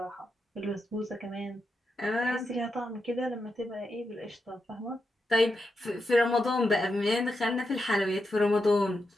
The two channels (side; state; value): both; normal; correlation 0.86